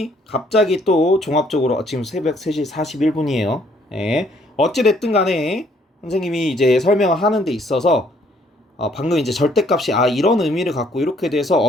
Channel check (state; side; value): normal; both; correlation 0.65